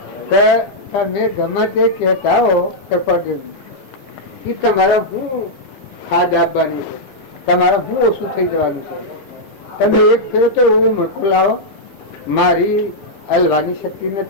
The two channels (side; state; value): right; late; 15 ms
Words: કે તમે ગમે તે કહેતા હો કૃપાદેવી એ તમારા હું ખાદ આપવાની છે, તમારે હું ઓછું થઈ જવાનું છે. તમે એક ફેરો તો એવું મણકું લાવો, મારી હલવાની શક્તિ